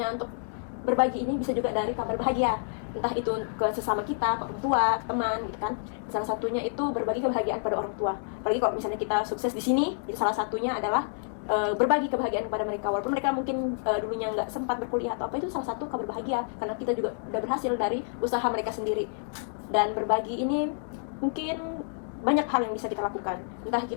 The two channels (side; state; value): right; silent; digital silence